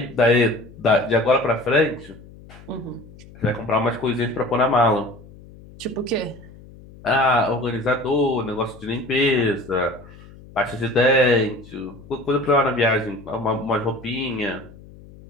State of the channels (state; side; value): noise; left; hum, 20 dB below the sound